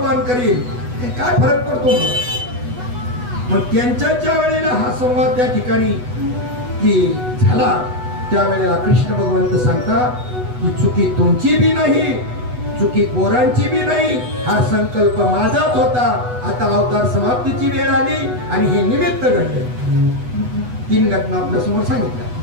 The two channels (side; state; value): left; late; 8.1 ms